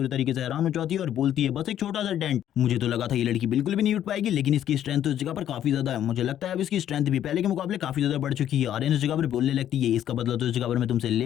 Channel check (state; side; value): quieter; right; 10.9 dB